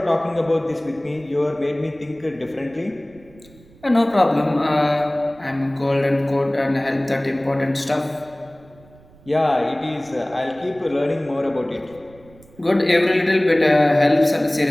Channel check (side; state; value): right; noise; rumble, 26 dB below the sound